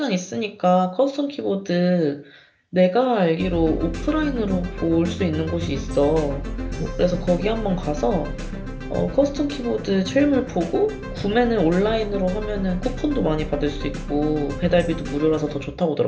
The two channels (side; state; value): both; identical; correlation 1.00